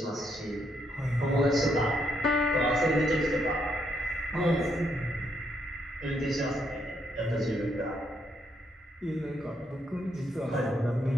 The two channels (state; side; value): normal; both; correlation 0.75